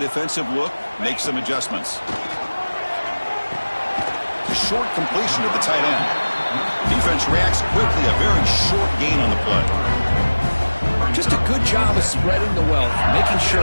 look, makes some adjustments. Short completion to the tight end. Defense reacts quickly, a very short gain on the play. Just a good job of spreading the wealth, making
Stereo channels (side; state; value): both; inverted; correlation -1.00